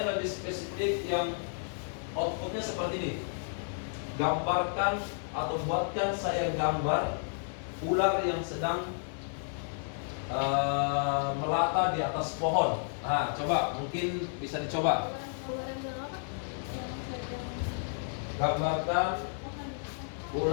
lebih spesifik yang outputnya seperti ini. Gambarkan atau buatkan saya gambar ular yang sedang melata di atas pohon. Nah, coba mungkin bisa dicoba. Gambarkan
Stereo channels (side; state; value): right; silent; 56 dB below the other